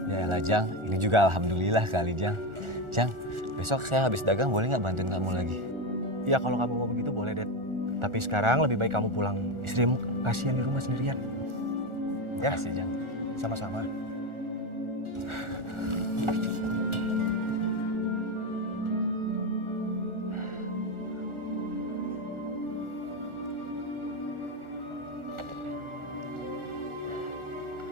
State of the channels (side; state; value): left; late; 1.4 ms